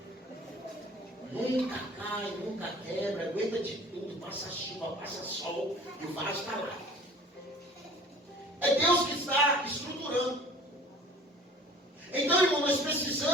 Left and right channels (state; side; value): normal; both; correlation 0.46